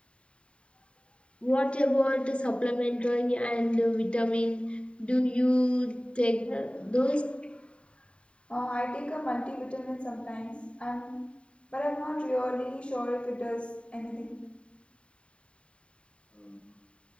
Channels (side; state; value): right; late; 0.058 ms